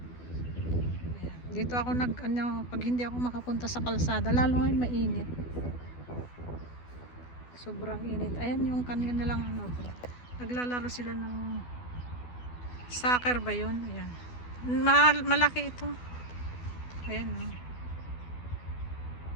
Dito ako pag hindi ako makapunta sa kalsada, lalo ngayon mainit. Sobrang init. Ayan yung kanina lang naglalaro sila ng soccer ba yun? Ayan. Malaki ito. Ayan.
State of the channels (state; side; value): late; right; 12 ms